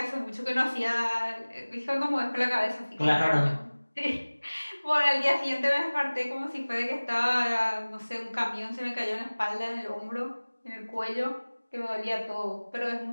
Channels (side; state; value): both; inverted; correlation -1.00